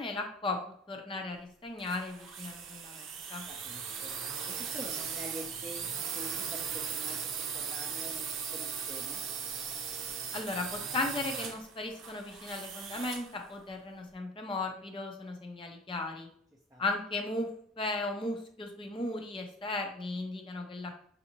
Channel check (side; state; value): both; normal; correlation 0.38